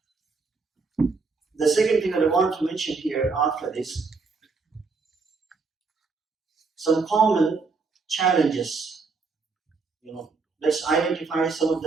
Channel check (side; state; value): left; quieter; 4.5 dB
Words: The second thing that I want to mention here after this, some common challenges. Let's identify some of